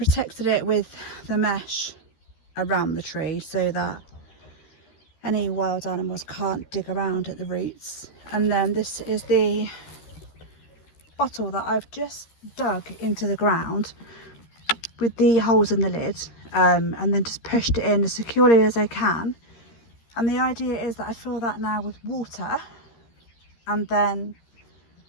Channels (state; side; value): late; right; 13 ms